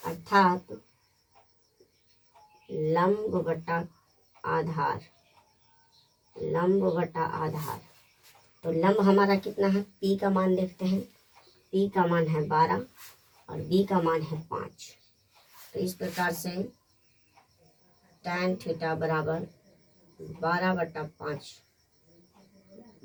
अर्थात लंब बटा आधार। लंब बटा आधार। तो लंब हमारा कितना है? P का मान देखते हैं। P का मान है 12 और B का मान है 5। तो इस प्रकार से टैन थीटा बराबर 12/5।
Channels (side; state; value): both; identical; correlation 1.00